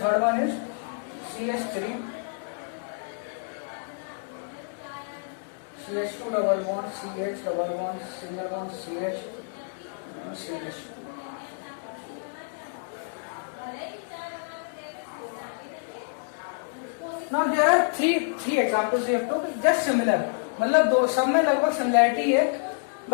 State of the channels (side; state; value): right; silent; digital silence